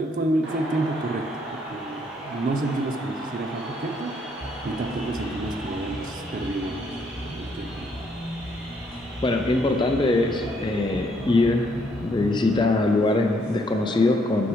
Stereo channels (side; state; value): both; normal; correlation 0.70